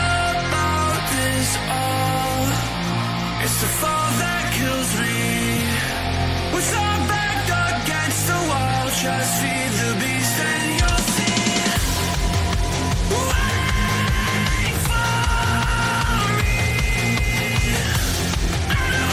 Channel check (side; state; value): both; identical; correlation 1.00